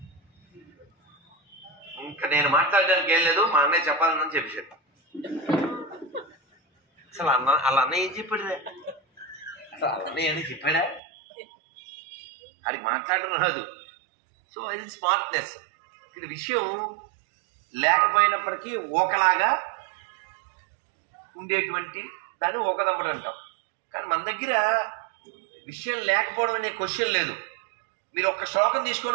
ఇంకా నేను మాట్లాడడానికి ఏం లేదు, మా అన్నయ్య చెప్పాలని చెప్పేశాడు. అసలు వాళ్ళ అన్నయ్య ఏం చెప్పాడు? అసలు వాళ్ళ అన్నయ్య అని చెప్పాడా? అది మాట్లాడడం రాదు. సో ఇది స్మార్ట్నెస్. ఇది విషయం లేకపోయినప్పటికీ ఒకలాగా ఉండేటువంటి దాన్ని ఒకదమ్మడు అంటాం. కానీ మన దగ్గర విషయం లేకపోవడం అనే క్వశ్చన్ లేదు. మీరు ఒక్క శ్లోకం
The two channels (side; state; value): left; drops out; at 11.0 s